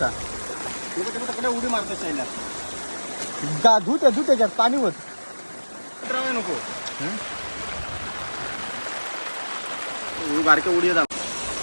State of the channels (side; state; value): both; inverted; correlation -1.00